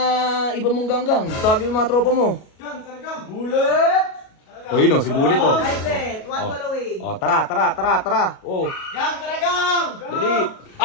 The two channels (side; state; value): right; late; 37 ms